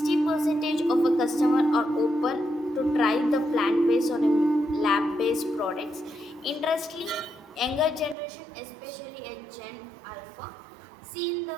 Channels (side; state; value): left; drops out; at 8.2 s